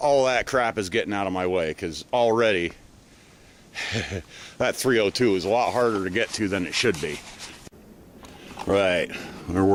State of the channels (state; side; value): identical; both; correlation 1.00